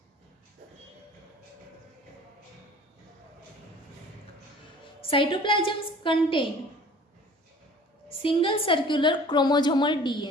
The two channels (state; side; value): normal; both; correlation 0.47